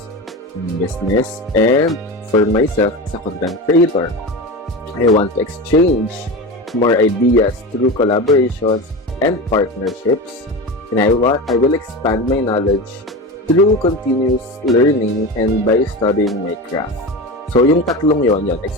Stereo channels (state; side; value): normal; both; correlation 0.25